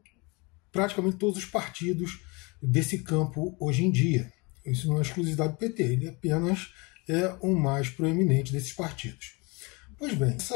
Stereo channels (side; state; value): right; quieter; 27.9 dB